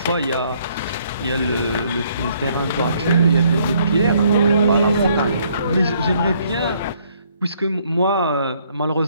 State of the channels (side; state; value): both; inverted; correlation -0.66